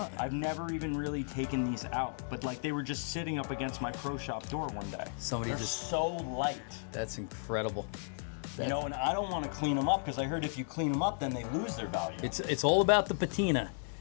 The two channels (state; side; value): silent; right; digital silence